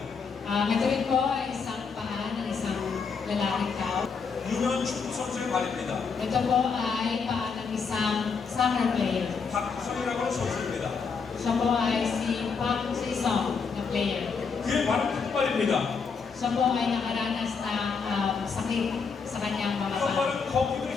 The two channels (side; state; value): right; quieter; 5.4 dB